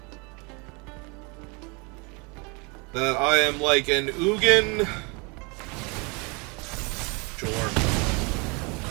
that I am like an Ugin. Sure.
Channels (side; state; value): left; quieter; 30.2 dB